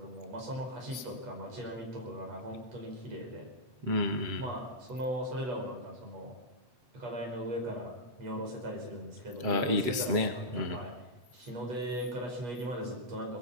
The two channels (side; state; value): left; late; 7.7 ms